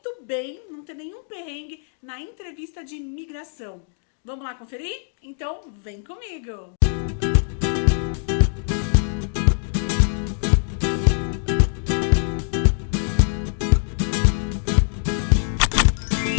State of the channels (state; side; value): silent; right; 63 dB below the other